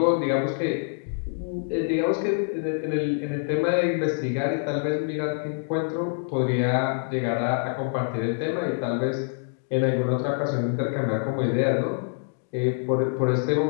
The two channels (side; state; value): right; silent; digital silence